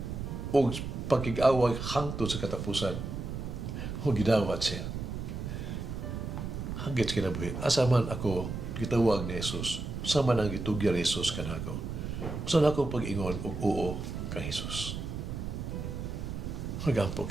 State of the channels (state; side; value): noise; right; rumble, 5 dB below the sound